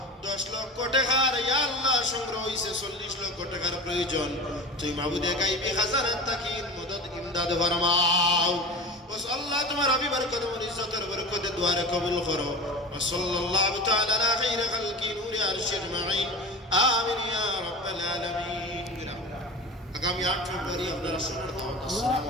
10 লক্ষ টাকার ইয়া আল্লাহ সংগ্রহ হইছে 40 লক্ষ টাকার প্রয়োজন তুই মাবুদে গায়বী খাজানাত তাকিন মদদ ইমদাদ ফরমাও ওয়াস আল্লাহ তোমার হাবিবের কদমের ইজ্জতের বরকতে দুয়ারে কবুল করো ওয়া সাল্লাল্লাহু তাআলা আলা খাইরি খালকি নূরি আরশি আজমাইন আমিন ইয়া রাব্বাল আলামিন আগামী 8 ফেব্রুয়ারি আপনারা শুনুন আসসালামু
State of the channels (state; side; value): normal; both; correlation 0.32